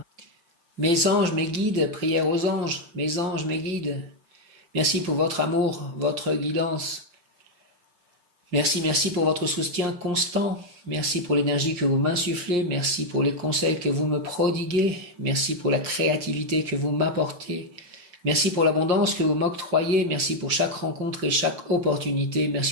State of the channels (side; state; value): left; late; 5.7 ms